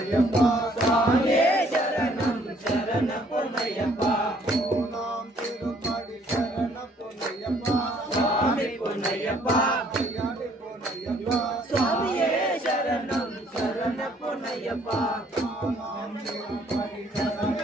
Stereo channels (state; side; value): normal; both; correlation 0.62